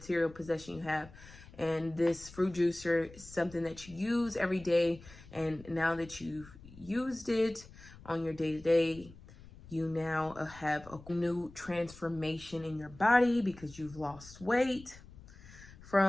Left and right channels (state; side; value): noise; left; rumble, 20 dB below the sound